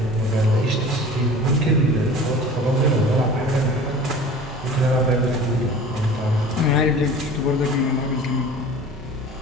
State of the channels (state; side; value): normal; both; correlation 0.41